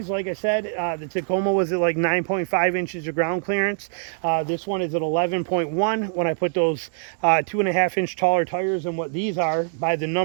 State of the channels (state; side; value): silent; left; digital silence